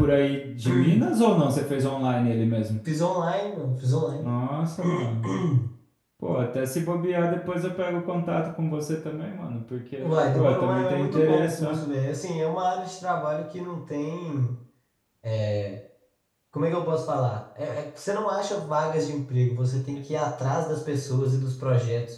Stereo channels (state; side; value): identical; both; correlation 1.00